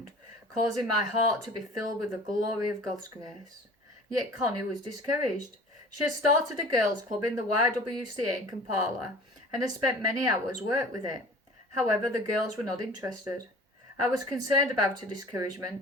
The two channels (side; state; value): both; normal; correlation 0.44